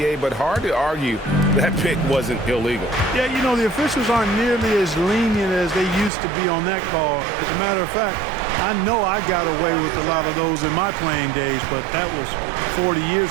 but hard to argue that pick wasn't illegal. Yeah, you know, the officials aren't nearly as lenient as they used to be on that call. As a matter of fact, I know I got away with a lot of those in my playing days, but that was 40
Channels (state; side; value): drops out; left; at 6.1 s